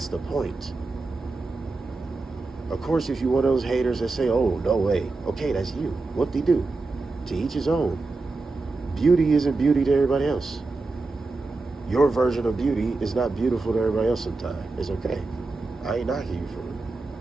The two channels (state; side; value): quieter; left; 3.6 dB